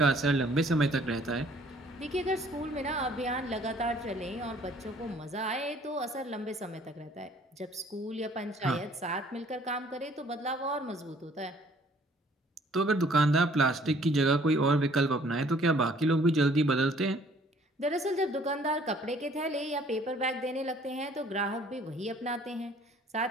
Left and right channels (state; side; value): normal; both; correlation 0.58